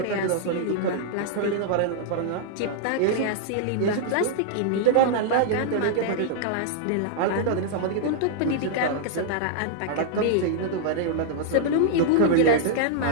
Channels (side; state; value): both; different; correlation -0.01